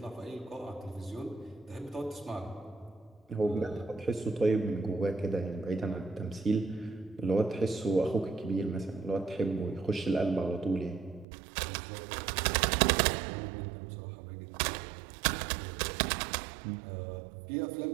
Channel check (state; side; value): drops out; left; at 11.2 s